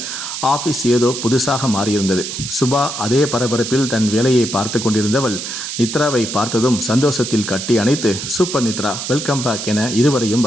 ஆஃபீஸ் ஏதோ புதுசாக மாறியிருந்தது. சுபா அதே பரபரப்பில் தன் வேலையை பார்த்து கொண்டிருந்தவள் நித்ராவை பார்த்ததும் சந்தோஷத்தில் கட்டி அணைத்து, சூப்பர் நித்ரா, வெல்கம் பேக் என இருவரையும்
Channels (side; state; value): right; noise; hiss, 6 dB below the sound